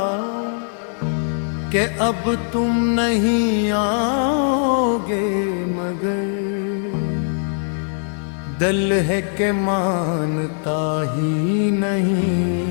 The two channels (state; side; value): silent; right; digital silence